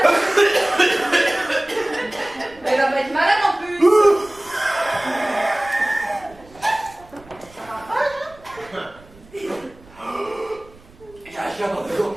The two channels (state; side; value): noise; right; rumble, 24 dB below the sound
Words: Il y a un chien dans le dos.